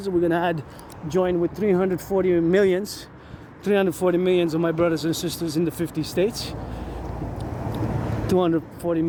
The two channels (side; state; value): both; identical; correlation 1.00